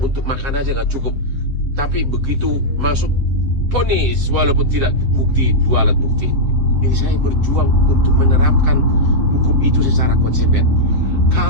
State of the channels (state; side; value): late; left; 7.4 ms